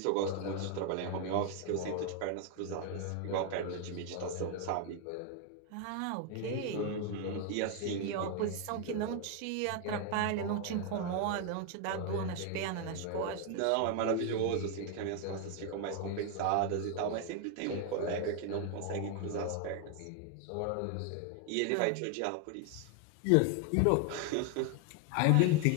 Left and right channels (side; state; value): both; different; correlation 0.01